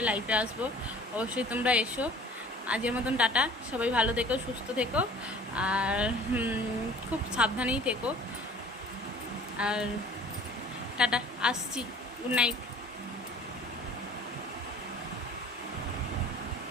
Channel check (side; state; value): both; normal; correlation 0.48